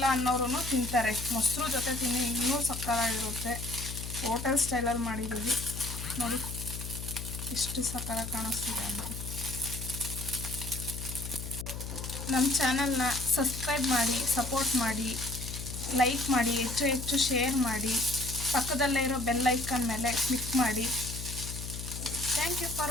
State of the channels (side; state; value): left; noise; hum, 7 dB below the sound